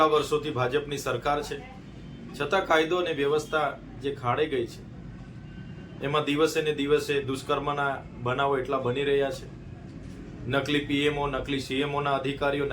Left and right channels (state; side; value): identical; both; correlation 1.00